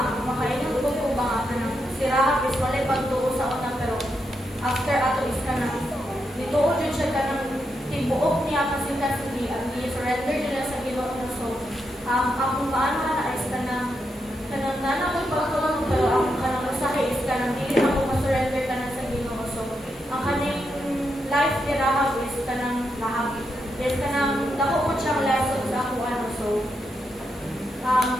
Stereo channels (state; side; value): normal; both; correlation 0.83